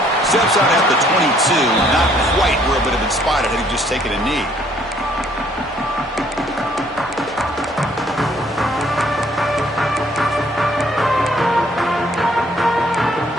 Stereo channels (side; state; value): both; normal; correlation 0.63